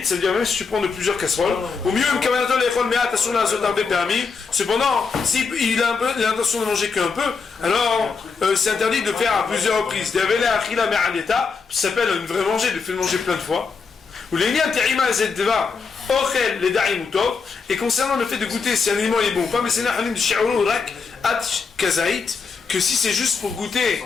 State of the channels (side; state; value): right; quieter; 5.1 dB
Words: ça veut dire même si tu prends de plusieurs casseroles, au mieux, cependant, s'il a l'intention de manger qu'un peu, alors c'est interdit de faire à plusieurs reprises. Ça s'appelle une vraie manger, de faire manger plein de fois. Et concernant le fait de goûter si un aliment est bon ou pas, mais c'est que si c'est juste pour goûter,